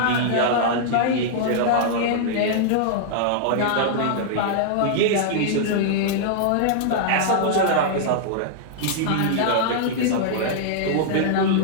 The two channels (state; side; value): different; both; correlation -0.01